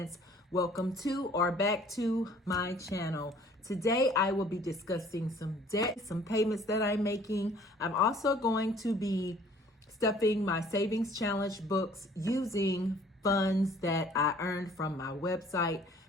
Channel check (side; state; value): both; normal; correlation 0.55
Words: Welcome to or back to my channel. Today I will be discussing some debt, some payments that I'm making. I'm also going to be stuffing my savings challenge books using funds that I earned from my website,